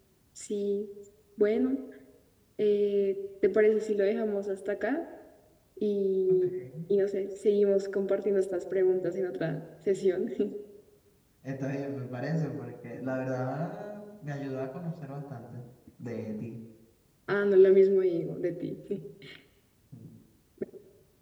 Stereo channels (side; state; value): both; identical; correlation 1.00